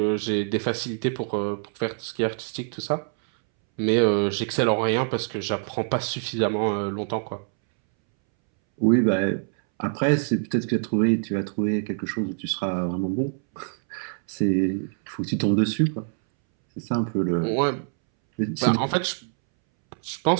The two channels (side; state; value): left; silent; 62 dB below the other